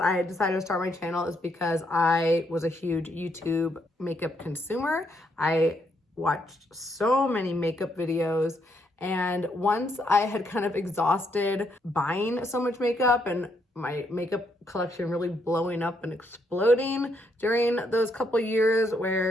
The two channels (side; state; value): both; normal; correlation 0.75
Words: I decided to start my channel is because I was a huge YouTube makeup consumer. I watched so many makeup videos, And once I had kind of exhausted buying so much makeup and my makeup collection really blowing up and exploding during those couple years